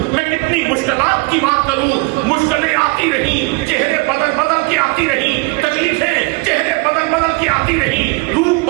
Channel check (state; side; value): quieter; left; 27.8 dB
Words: میں کتنی مشکلات کی بات کروں. مشکلیں آتی رہی، چہرے بدل بدل کے آتی رہی، تکلیفیں چہرے بدل بدل کے آتی رہی، روح